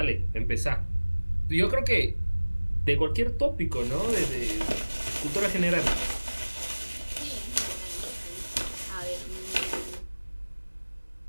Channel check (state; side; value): inverted; both; correlation -1.00